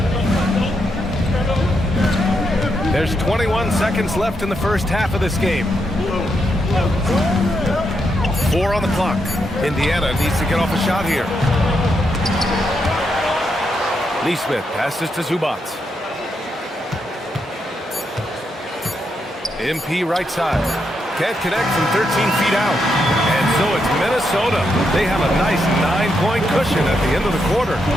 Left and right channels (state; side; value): normal; both; correlation 0.81